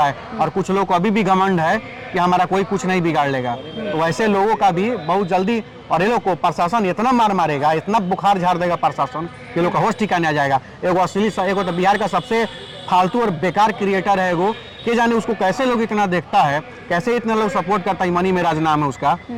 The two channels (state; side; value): identical; both; correlation 1.00